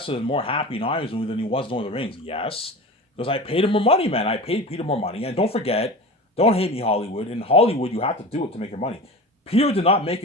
and more happy in Iron's movie than he was in Lord of the Rings. Yes, because I paid him more money, man. I paid Peter more money. And don't forget, don't hate me, Hollywood. In Hollywood, you have to do it to make your money. Peter did not make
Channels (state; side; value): normal; both; correlation 0.32